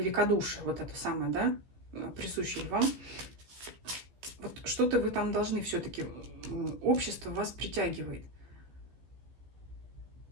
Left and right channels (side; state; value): left; late; 15 ms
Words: вот это самое, да, присущее вам. Вот что-то вы там должны все-таки, общество вас притягивает.